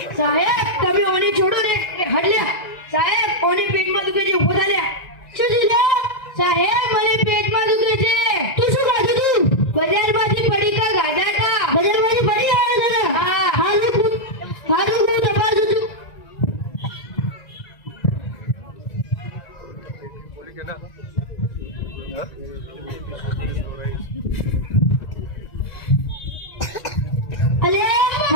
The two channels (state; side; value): late; right; 1.9 ms